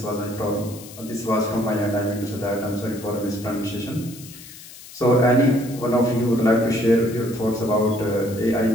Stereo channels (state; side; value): noise; left; hiss, 17 dB below the sound